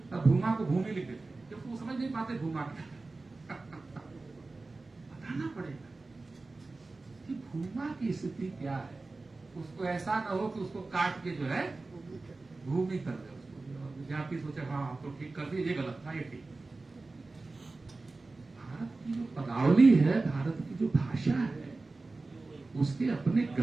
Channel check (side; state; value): left; quieter; 3.5 dB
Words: को भूमि लिख देते हैं क्योंकि वो समझ नहीं पाते भूमा क्या है। बताना पड़ेगा कि भूमा की स्थिति क्या है। उसको ऐसा ना हो कि उसको काट के जो है भूमि कर दे उसको, विद्यार्थी सोचे हाँ हम तो ठीक कर दिए, ये गलत था, ये ठीक। भारत की जो पदावली है, भारत की जो भाषा है, उसके अपने